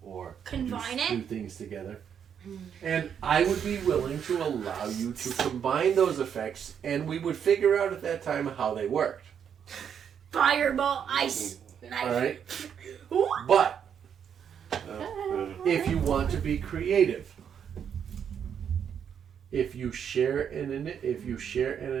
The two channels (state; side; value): quieter; left; 8.1 dB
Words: or Combine do, it? do things together. And I would be willing to allow you to combine those effects, and we would figure out at that time how they worked. Fireball, ice, All knife. right, but Uh, if you want to be creative, if you share an